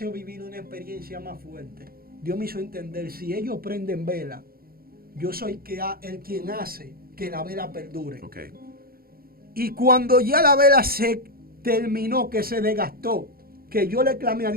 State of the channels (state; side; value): late; left; 0.43 ms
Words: vivir una experiencia más fuerte. Dios me hizo entender, si ellos prenden vela, yo soy el quien hace que la vela perdure. Y cuando ya la vela se terminó, que se desgastó, que yo le clamé a